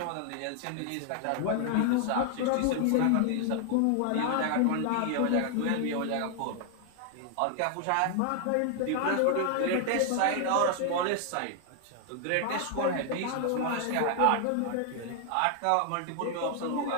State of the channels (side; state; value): both; different; correlation 0.00